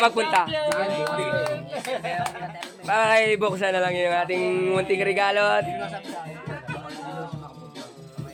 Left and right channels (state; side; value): identical; both; correlation 1.00